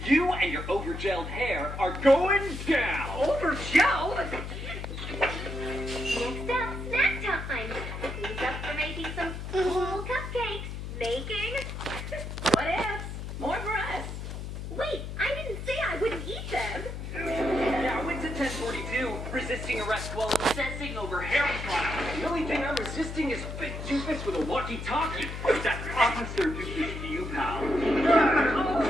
You and your over-gelled hair are going down! Over-gelled? Next up, snack time. Who's up for making some cool cupcakes? Making? What ifs? More for us. Wait, I didn't say I wouldn't eat them. Yeah, I went to 1042, resisting arrest while obsessing over hair product. The only thing I'm resisting is Big Doofus with a walkie-talkie. That's Officer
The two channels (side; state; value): left; noise; hum, 7 dB below the sound